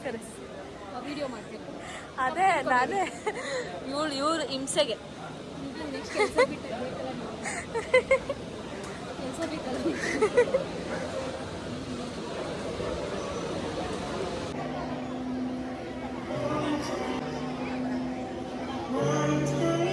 ವಿಡಿಯೋ ಮಾಡ್ಬೇಕು. ಅದೇ ನಾನೇ ಇವ್ರು ಹಿಂಸೆಗೆ. ನೆಕ್ಸ್ಟ್ ಕೆಲಸ ಬೇಕಲ್ಲ.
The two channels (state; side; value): identical; both; correlation 1.00